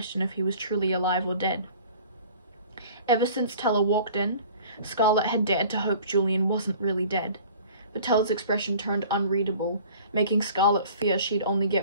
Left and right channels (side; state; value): both; inverted; correlation -0.47